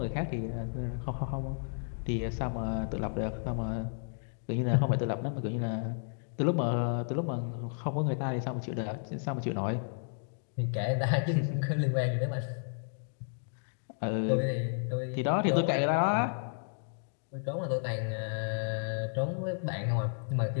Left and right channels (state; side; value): silent; right; digital silence